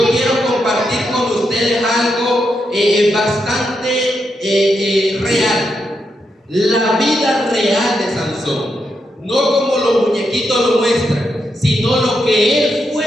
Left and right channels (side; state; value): both; normal; correlation 0.83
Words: quiero compartir con ustedes algo bastante real. La vida real de Sansón. No como los muñequitos lo muestran, sino lo que él fue